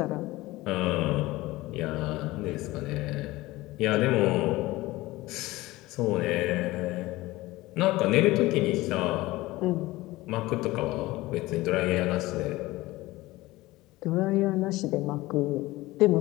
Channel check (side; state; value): right; quieter; 19.1 dB